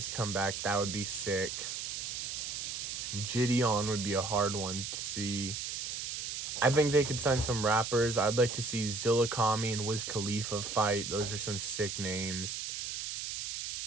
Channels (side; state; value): right; noise; hiss, 4 dB below the sound